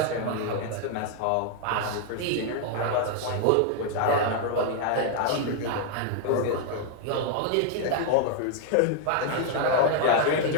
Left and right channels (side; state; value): both; different; correlation 0.00